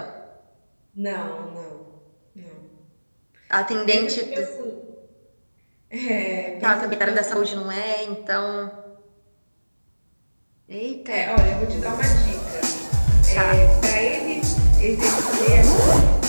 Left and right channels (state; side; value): inverted; both; correlation -1.00